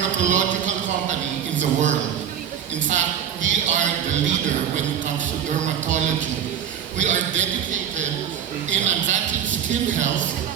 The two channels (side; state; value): left; quieter; 9.1 dB